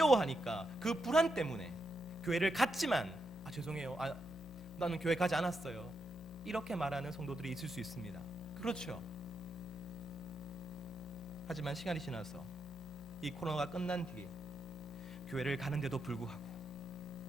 그 불안 때문에 교회를 갔지만 죄송해요, 나는 교회 가지 않았어요, 이렇게 말하는 성도들이 있을 수 있습니다. 그렇죠. 하지만 시간이 지나서 이 코로나가 끝난 뒤에 교회를 가는데도 불구하고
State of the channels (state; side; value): normal; both; correlation 0.83